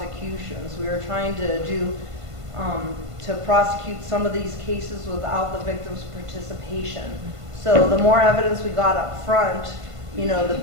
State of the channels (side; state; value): left; late; 1.5 ms